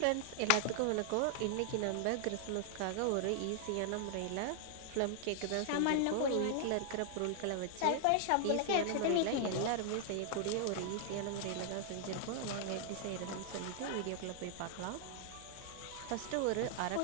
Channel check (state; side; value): different; both; correlation -0.01